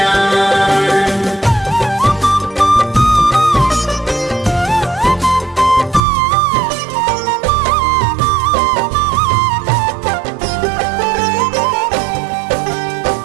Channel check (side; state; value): left; drops out; at 6.0 s